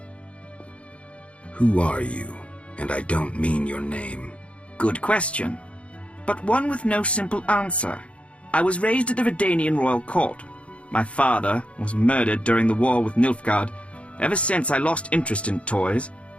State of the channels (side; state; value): right; late; 0.062 ms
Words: Who are you? And I don't mean your name. Good question, but one with no simple answer. I was raised at the Redanian royal court. My father was murdered during the war with Nilfgaard. Ever since I lost interest in toys,